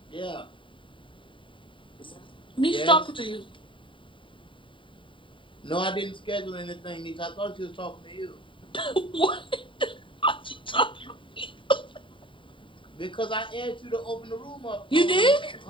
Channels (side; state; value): right; late; 0.25 ms